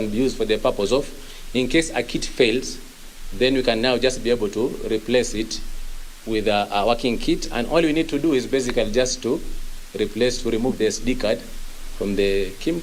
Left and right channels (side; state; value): both; identical; correlation 1.00